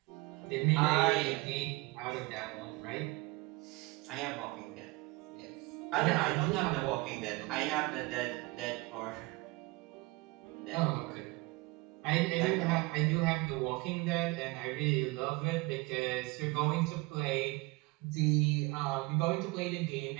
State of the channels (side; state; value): left; quieter; 23.6 dB